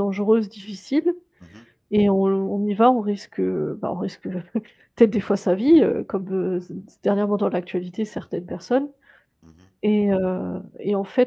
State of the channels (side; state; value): both; identical; correlation 1.00